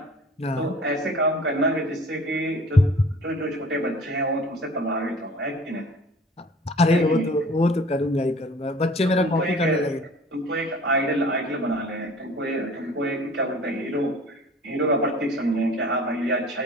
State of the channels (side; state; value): both; normal; correlation 0.47